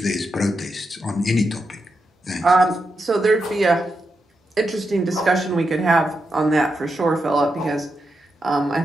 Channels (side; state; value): both; normal; correlation 0.86